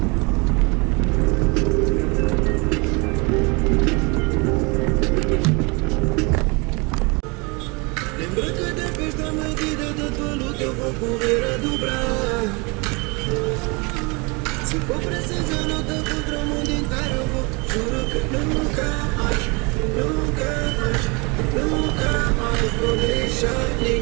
Lembra que depois da medida da tua luta eu vou correr a dobrar. Se for preciso eu luto contra o mundo inteiro, eu vou. Juro que nunca mais, nunca mais, nunca mais vou deixar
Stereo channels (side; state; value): left; quieter; 29.3 dB